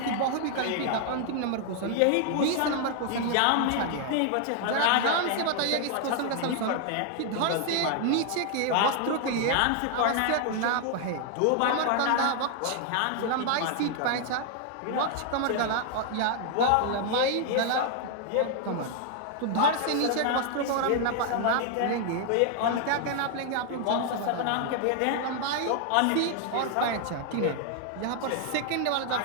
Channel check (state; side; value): different; both; correlation 0.00